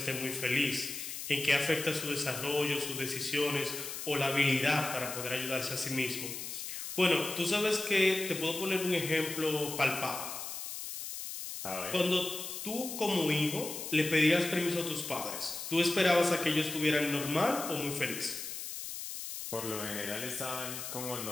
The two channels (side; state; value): left; noise; hiss, 7 dB below the sound